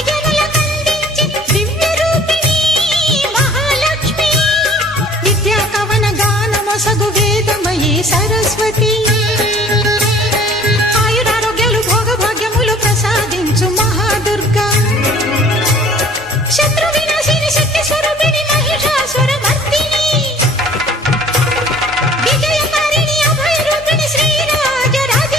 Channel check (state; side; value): normal; both; correlation 0.51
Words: జనులకందించి దివ్య రూపిణి మహాలక్ష్మి, విద్యా కవన గానమొసగు వేదమయీ సరస్వతి, మహాదుర్గా శత్రు వినాశిని శక్తి స్వరూపిణి మహిషాసుర మర్దిని, విజయకారిణి అభయ రూపిణి శ్రీరాజ